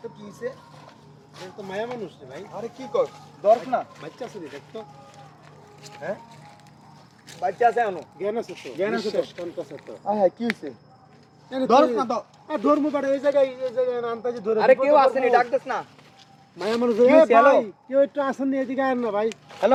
তো কি হইছে। এই তো মায়া মানুষ রে ভাই। আরে কি কর? দরক না। বাচ্চা আছে রে দেখ তো। হ্যাঁ? বাচ্চা আছে এখনো। জ্ঞান আছে তো। জ্ঞান আছে তো। কোন কাছে তো। হ্যাঁ কি হইছে? ধরস না তো। আর ধর্ম বাড়ে এই জায়গায় আনতাজি ধরে। আরে কেউ আসেনি, ডাক দেস না। মায়া মানুষ কি রে হইছে? হ্যালো? ভাই। কেউ একটু আসেন নি এদিকে আয়েন না ভাই।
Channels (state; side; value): identical; both; correlation 1.00